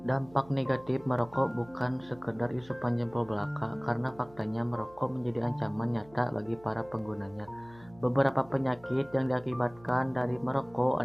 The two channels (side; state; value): right; noise; hum, 24 dB below the sound